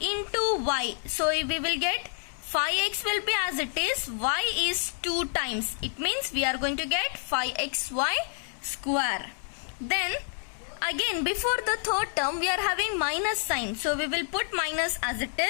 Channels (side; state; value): right; silent; 59 dB below the other